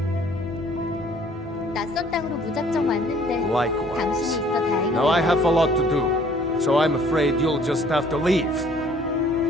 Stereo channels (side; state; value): both; normal; correlation 0.57